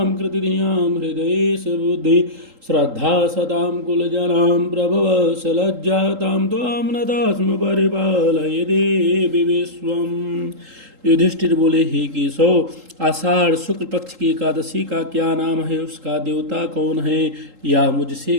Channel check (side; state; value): left; late; 3.8 ms